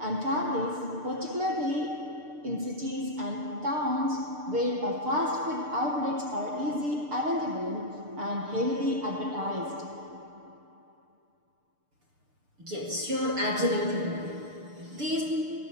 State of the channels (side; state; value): left; late; 6.7 ms